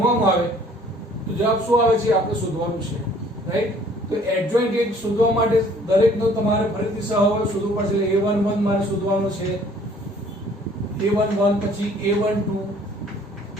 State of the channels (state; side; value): normal; both; correlation 0.56